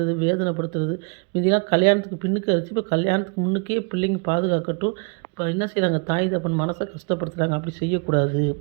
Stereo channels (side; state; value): left; quieter; 36.4 dB